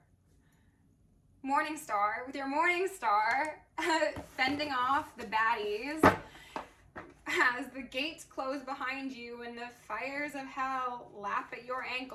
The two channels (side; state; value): both; identical; correlation 1.00